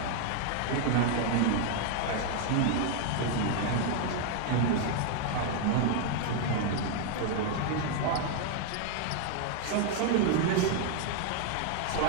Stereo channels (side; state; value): both; different; correlation 0.00